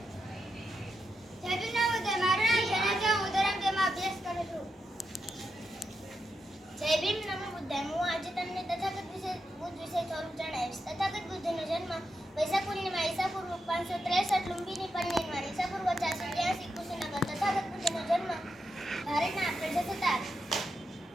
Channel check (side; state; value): both; normal; correlation 0.86